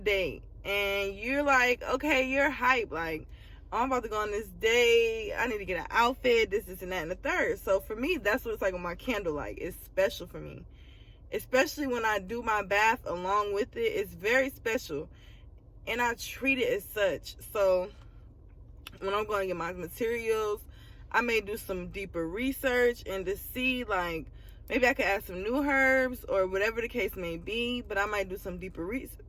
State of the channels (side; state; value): both; identical; correlation 1.00